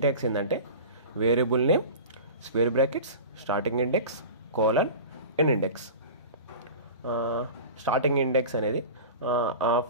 ఏంటంటే variable name square brackets starting index colon end index. Starting index అనేది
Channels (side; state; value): both; inverted; correlation -0.34